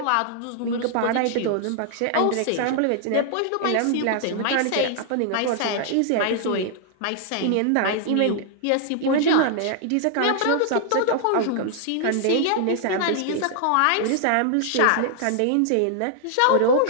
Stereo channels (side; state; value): both; different; correlation 0.00